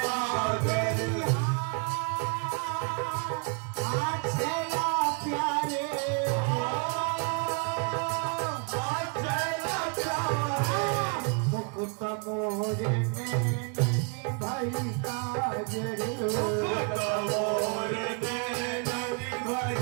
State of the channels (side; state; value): left; quieter; 38.0 dB